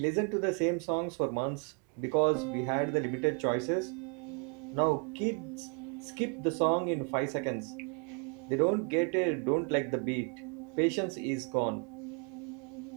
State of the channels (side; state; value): left; quieter; 38.2 dB